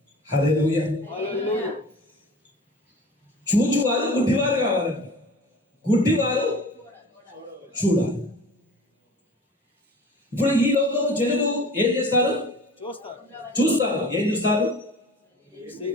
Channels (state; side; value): normal; both; correlation 0.41